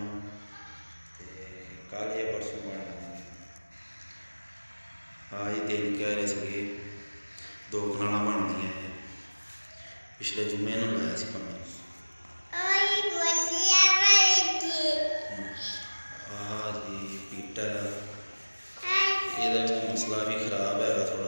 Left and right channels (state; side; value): inverted; both; correlation -1.00